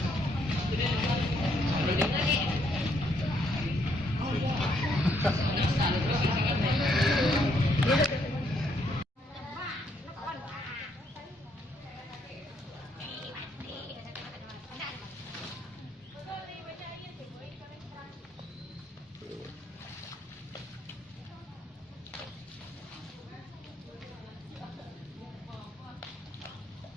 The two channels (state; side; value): normal; both; correlation 0.72